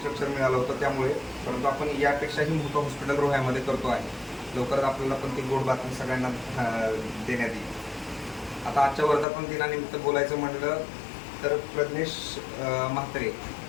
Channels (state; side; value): drops out; right; at 9.2 s